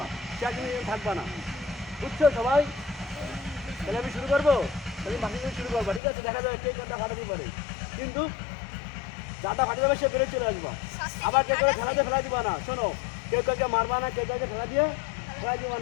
সে কিন্তু থাকবা না। বুঝছো সবাই? তাহলে আমি শুরু করবো, তাহলে বাকি শুরু করবা, ঠিক আছে? দেখা যাবে কে কোনটা ফাটাতে পারে, কিন্তু যাটা ফাটে যাবে সে বেড়ে চলে আসবা। আবার কেউ কেউ খেলাতে ফেলা দিবা না, শোনো, কেউ কাউকে মারবা না, কেউ কাউকে ফেলা দিয়ে ফেলা দিবা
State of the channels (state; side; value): drops out; right; at 6.0 s